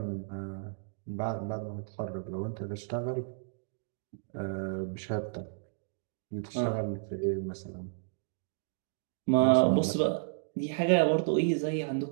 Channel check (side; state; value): left; silent; digital silence